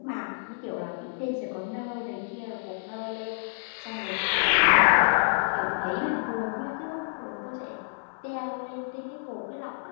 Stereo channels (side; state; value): right; silent; 59 dB below the other